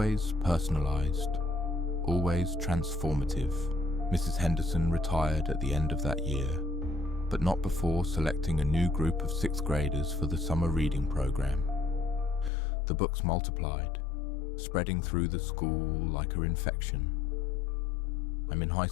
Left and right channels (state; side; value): drops out; right; at 12.5 s